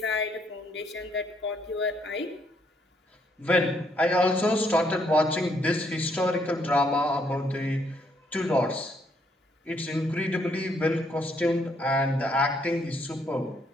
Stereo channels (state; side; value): normal; both; correlation 0.71